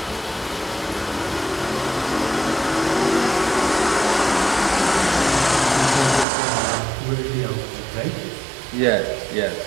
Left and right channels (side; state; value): left; drops out; at 6.2 s